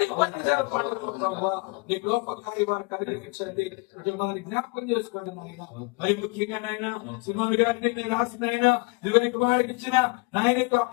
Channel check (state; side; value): quieter; right; 28.0 dB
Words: నీ గొప్ప కార్యవారు కలిగించండి. కుటుంబాన్ని జ్ఞాపకం చేసుకోండి నాయన. మరి ముఖ్యంగా నాయన సుమన్ గారిని రాసిన ఆయన కుమారుడికి ఇచ్చిన నాయన